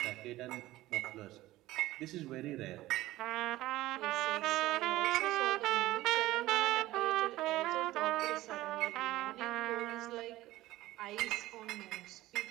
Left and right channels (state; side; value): quieter; left; 16.8 dB